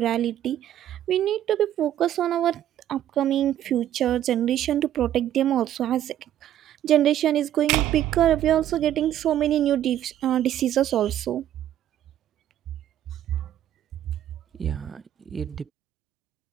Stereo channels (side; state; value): left; quieter; 11.6 dB